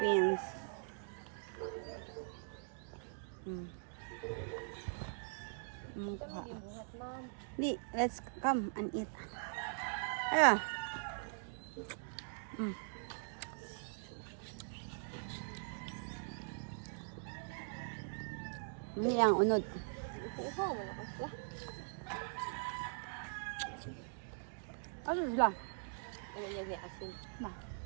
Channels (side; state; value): left; silent; digital silence